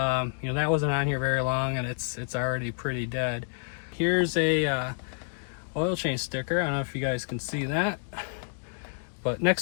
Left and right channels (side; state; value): right; silent; digital silence